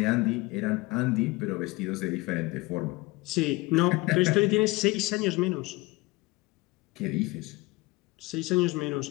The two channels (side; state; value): right; quieter; 22.4 dB